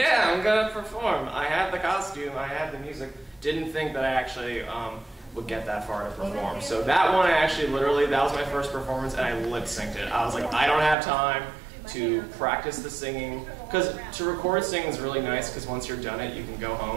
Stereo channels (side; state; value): left; drops out; at 11.0 s